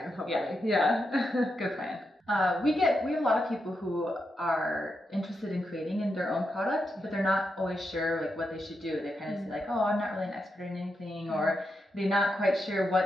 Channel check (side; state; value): both; normal; correlation 0.85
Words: hopefully. Yeah. Good plan. We have a lot of people who are interested in creating in their own product, but they're not always sure like what they should do. They kind of say like, oh, I'm not really an expert in anything, or they're not quite sure